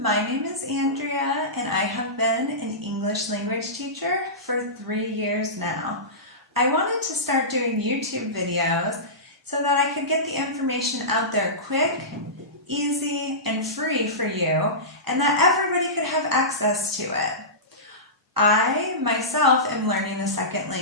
my name is Andrea and I have been an English language teacher for 3 years now. I wanted to start doing YouTube videos so that I could get the information out there quick, easy, and free for you, and that everybody could have access to it. I myself am learning a second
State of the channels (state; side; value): normal; both; correlation -0.19